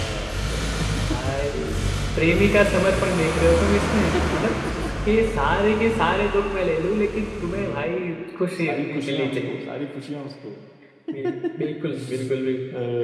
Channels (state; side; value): identical; both; correlation 1.00